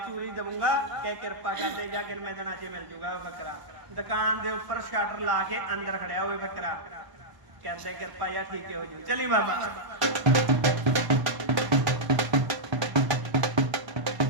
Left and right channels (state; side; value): late; left; 1.0 ms